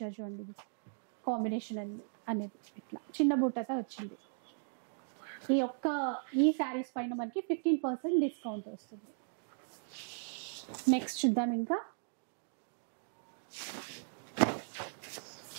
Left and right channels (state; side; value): silent; left; digital silence